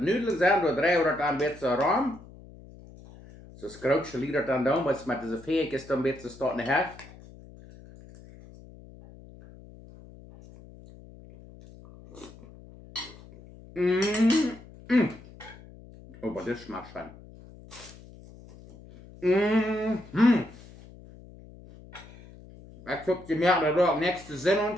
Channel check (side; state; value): left; noise; hum, 20 dB below the sound